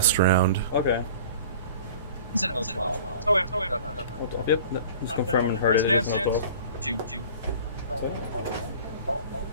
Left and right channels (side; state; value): both; inverted; correlation -0.43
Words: round. Okay. Is it 0/12? Oh yeah. Yep. Just confirming her. It is 0/12.